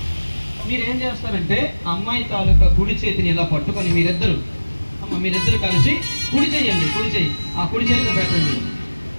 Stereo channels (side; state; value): both; inverted; correlation -1.00